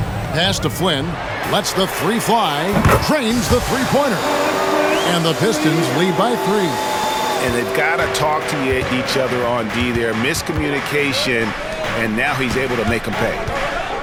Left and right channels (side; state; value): both; identical; correlation 1.00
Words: Pass to Flynn. Lets the 3 fly. Trains the three-pointer. And the Pistons lead by 3. And they've got to talk to each other on D there. Miscommunication, and now he's able to make them pay.